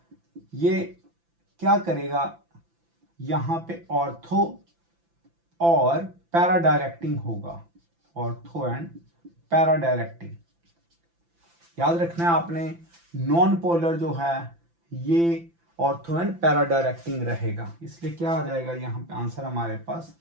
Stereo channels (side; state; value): left; late; 5.9 ms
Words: ये क्या करेगा, यहां पे ऑर्थो और पैरा डायरेक्टिंग होगा, ऑर्थो एंड पैरा डायरेक्टिंग। याद रखना है आपने, नॉन पोलर जो है ये ऑर्थो एंड पैरा डायरेक्टिंग रहेगा, इसलिए क्या आ जाएगा यहाँ पे आंसर हमारे पास